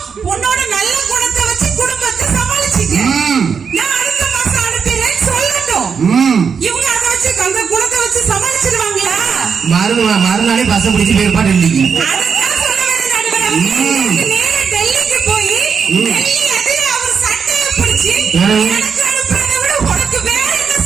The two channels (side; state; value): left; quieter; 6.3 dB